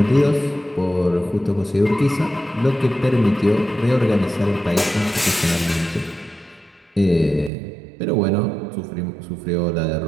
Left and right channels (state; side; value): drops out; left; at 7.5 s